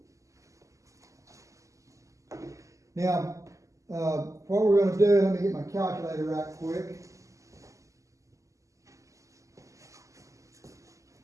Now, what we're going to do, let me get my calculator right quick.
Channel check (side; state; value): left; late; 0.16 ms